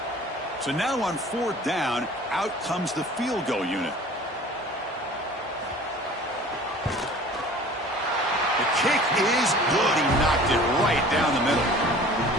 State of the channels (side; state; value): both; normal; correlation 0.45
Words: So now on 4th down, out comes the field goal unit. The kick is good. He knocked it right down the middle.